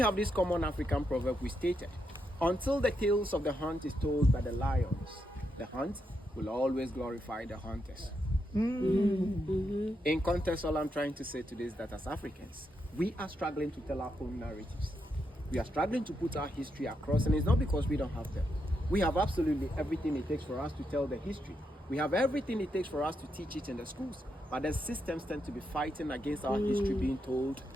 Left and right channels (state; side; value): normal; both; correlation 0.82